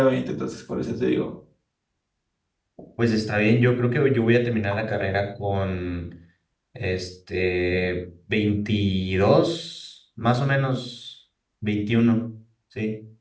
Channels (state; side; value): identical; both; correlation 1.00